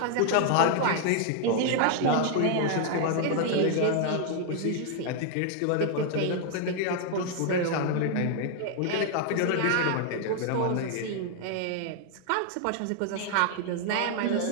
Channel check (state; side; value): different; both; correlation 0.00